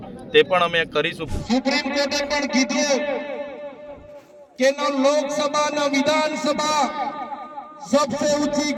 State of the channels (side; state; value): both; identical; correlation 1.00